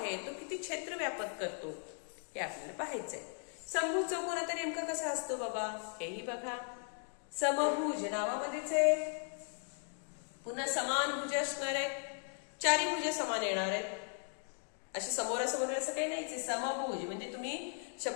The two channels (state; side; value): silent; right; 53 dB below the other